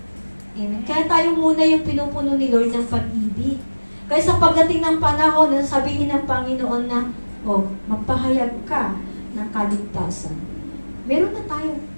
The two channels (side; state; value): both; inverted; correlation -1.00